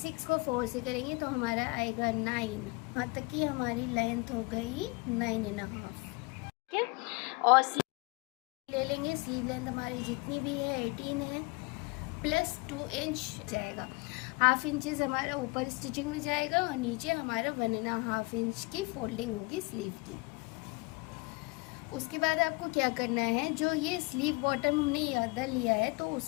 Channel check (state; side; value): quieter; right; 27.2 dB